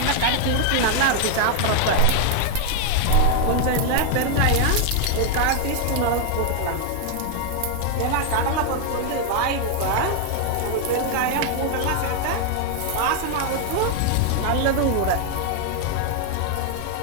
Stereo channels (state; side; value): different; both; correlation 0.00